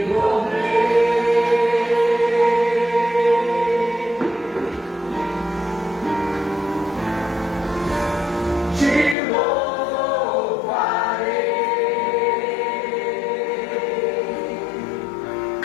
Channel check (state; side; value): drops out; right; at 9.2 s